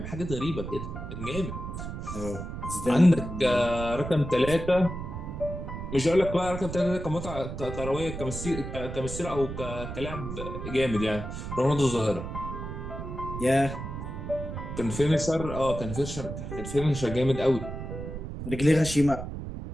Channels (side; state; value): right; noise; rumble, 7 dB below the sound